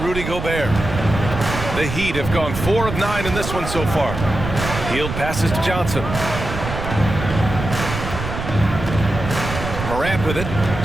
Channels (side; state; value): right; noise; rumble, 6 dB below the sound